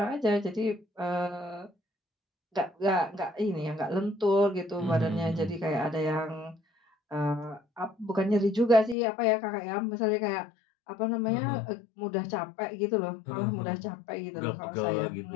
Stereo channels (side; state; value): right; drops out; at 9.0 s